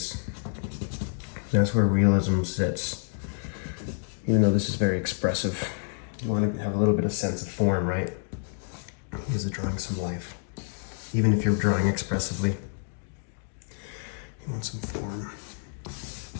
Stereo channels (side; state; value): right; silent; digital silence